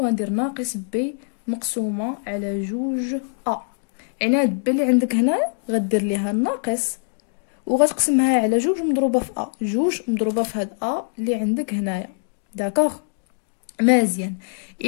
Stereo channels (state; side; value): silent; right; digital silence